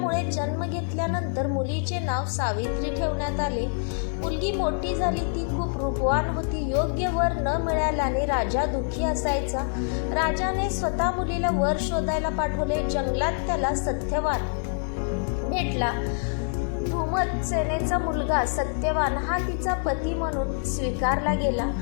जन्म घेतल्यानंतर मुलीचे नाव सावित्री ठेवण्यात आले. मुलगी मोठी झाली, ती खूप रूपवान होती. योग्य वर न मिळाल्याने राजा दुःखी असायचा. राजाने स्वतः मुलीला वर शोधायला पाठवले. जंगलात त्याला सत्यवान भेटला. धूमसेनेचा मुलगा सत्यवान हा तिचा पती म्हणून स्वीकारला गेला.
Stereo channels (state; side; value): silent; right; digital silence